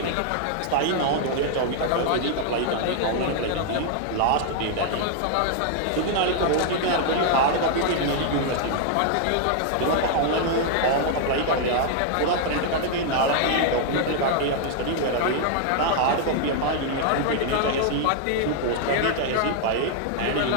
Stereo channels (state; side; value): different; both; correlation 0.00